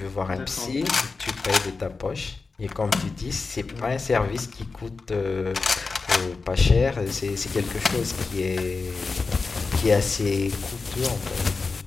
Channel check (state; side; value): quieter; right; 4.2 dB